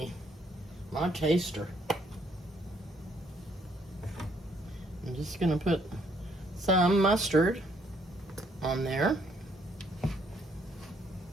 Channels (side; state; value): both; normal; correlation 0.68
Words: My taster. I'm just gonna put some mustard on there.